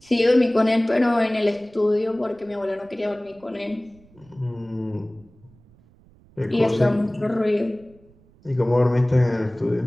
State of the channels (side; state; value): right; noise; rumble, 28 dB below the sound